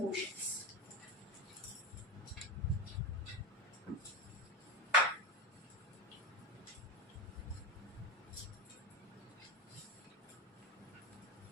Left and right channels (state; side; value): normal; both; correlation 0.18